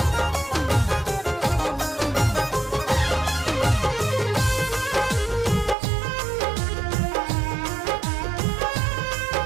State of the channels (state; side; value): drops out; left; at 5.8 s